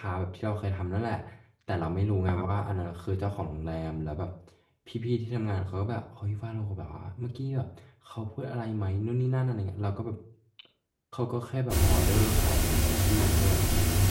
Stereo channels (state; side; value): identical; both; correlation 1.00